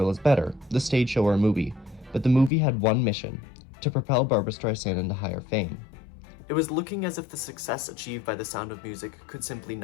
is better, the stage show or movie, but the movie had one mission: to propel Barbra Streisand into higher fame. It was looking as if the success achieved by The Sound of Music could simply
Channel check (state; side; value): drops out; right; at 2.5 s